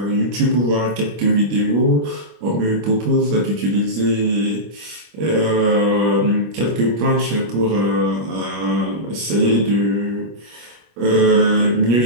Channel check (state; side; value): late; left; 25 ms